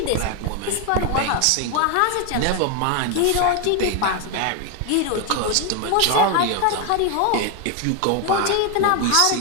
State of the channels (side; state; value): both; different; correlation 0.01